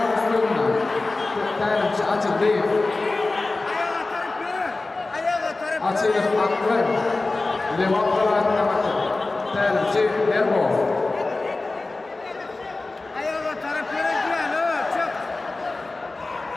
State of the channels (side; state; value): right; quieter; 3.3 dB